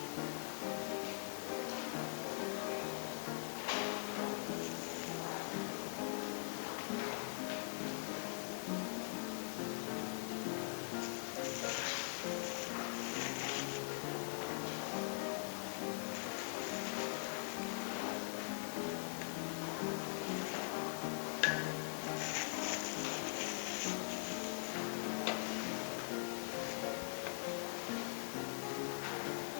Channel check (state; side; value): silent; right; digital silence